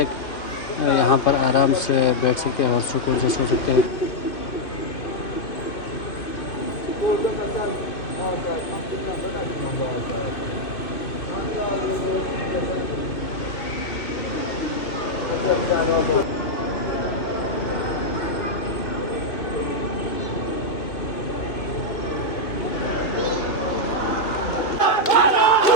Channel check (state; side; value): late; right; 2.8 ms